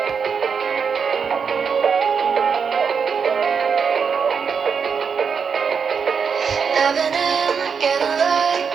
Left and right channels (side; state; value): left; quieter; 6.2 dB